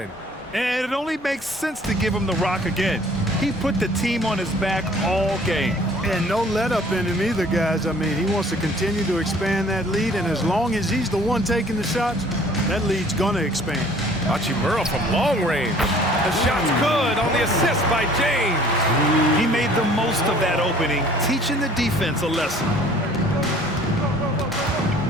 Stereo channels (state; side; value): normal; both; correlation 0.54